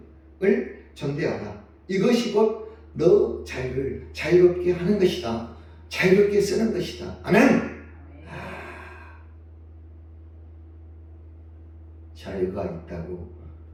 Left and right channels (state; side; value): identical; both; correlation 1.00